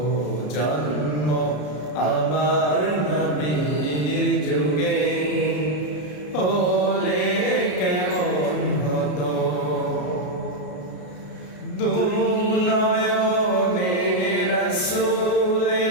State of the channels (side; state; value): right; late; 33 ms